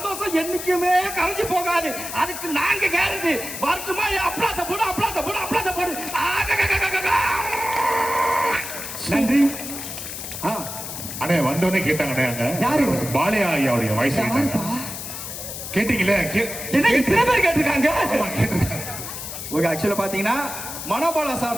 என்னைக்குமே கரைஞ்சு போகாது. அதுக்கு நாங்க கேரண்டி. வரட்டுமா? அப்ளாச போடு, அப்ளாச போடு, அப்ளாச போடு. நன்றி. அண்ணே வந்தோடனே கேட்டாங்கண்ணே, அங்க யாரு? பாலையா ஐயாவுடைய வாய்ஸ் கேட்டீங்களே? என்ன இத்தனை பேர் கேட்டிருக்காங்க? ஓகே, ஆக்சுவலா பாத்தீங்கன்னா மனோபாலா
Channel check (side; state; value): left; noise; hiss, 8 dB below the sound